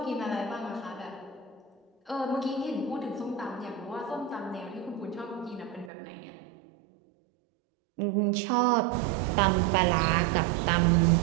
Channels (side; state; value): left; drops out; at 5.9 s